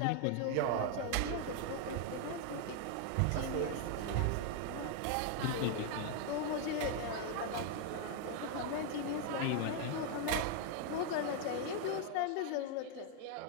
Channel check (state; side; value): different; both; correlation 0.00